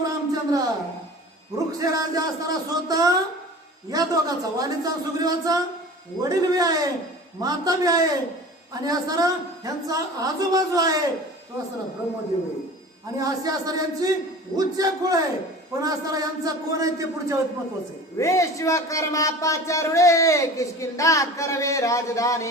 रामचंद्र वृक्ष राजा असताना स्वतः या दोघांचा वालीचा सुग्रीवाचा वडील बी आहे माता बी आहे आणि असताना ह्यांचा आजूबाजू आहे तो असताना ब्रह्मदेव आहे आणि असे असताना यांची उच्च कुळ आहे. पण असताना यांचा कोण आहे ते पुढच्या वेळेत महत्वाचं आहे. विश्वकर्मा पाचारुळे किष्किंधा करवे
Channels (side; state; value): both; normal; correlation 0.39